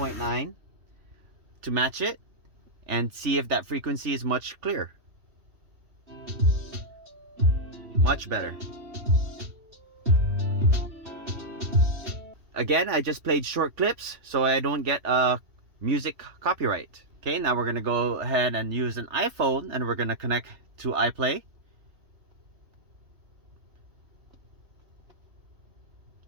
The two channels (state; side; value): late; left; 3.1 ms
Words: to match it and see if that frequency is much clearer. Much better. Again, I just played short clips so I don't get a music copyright. Okay, now we're gonna go ahead and use an iPhone and we're gonna connect to iPlay.